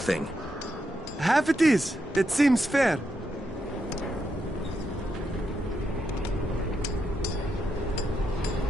Half it is. That seems fair.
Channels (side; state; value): both; normal; correlation 0.83